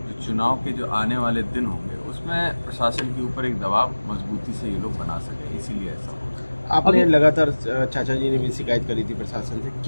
चुनाव के जो आने वाले दिन होंगे उसमें प्रशासन के ऊपर एक दबाव मजबूती से ये लोग बना सके, इसीलिए ऐसा हो। आपने लगातार चाचा जी ने भी शिकायत करी थी प्रशासन से,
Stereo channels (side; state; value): both; inverted; correlation -1.00